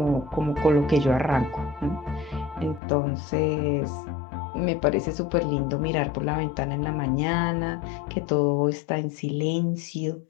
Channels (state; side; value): drops out; right; at 2.8 s